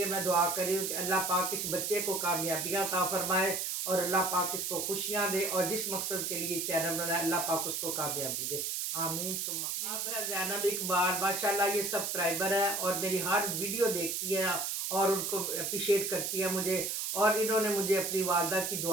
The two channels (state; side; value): noise; right; hiss, 1 dB below the sound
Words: मैं दुआ कर रही हूँ कि अल्लाह पाक इस बच्चे को कामयाबियाँ अता फरमाए, और अल्लाह पाक इसको खुशियाँ दे, और जिस मकसद के लिए चैनल बनाए अल्लाह पाक उसको कामयाबी दे, आमीन सुम्मा। अब है ज़ैनब इकबाल, माशाल्लाह ये सब्सक्राइबर है और मेरी हर वीडियो देखती है और उनको अप्रिशिएट करती है मुझे, और इन्होंने मुझे अपनी वालदा की